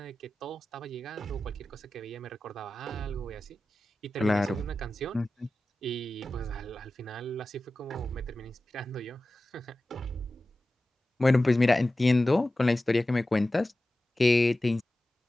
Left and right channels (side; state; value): both; normal; correlation 0.95